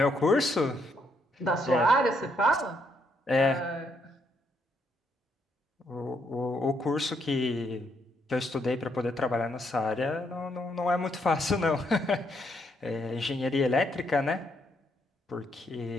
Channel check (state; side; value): normal; both; correlation 0.74